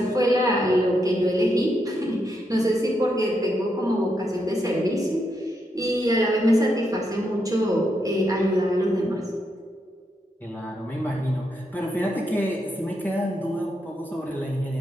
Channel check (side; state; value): both; normal; correlation 0.81